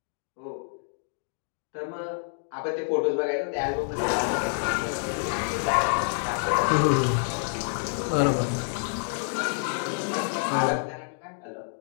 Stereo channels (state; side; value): silent; right; digital silence